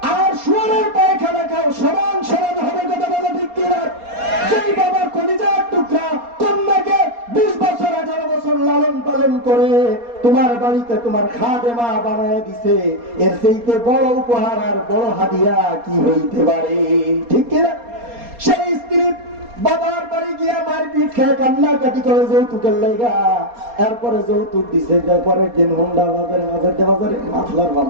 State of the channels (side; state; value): left; late; 4.2 ms